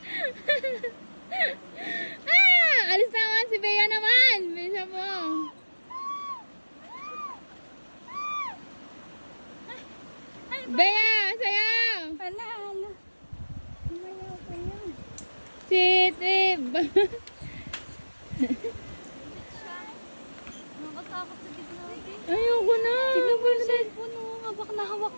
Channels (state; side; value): inverted; both; correlation -1.00